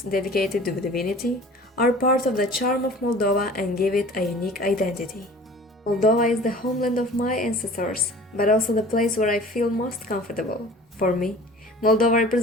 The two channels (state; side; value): normal; both; correlation 0.45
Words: dedicated to divinity are part of the charm of Moldova and give it a unique identity. Moldova is the homeland of my ancestors, but also the place where I feel most comfortable. For me, Moldova